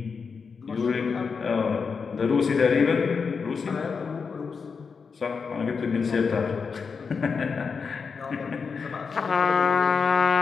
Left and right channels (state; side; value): quieter; right; 5.4 dB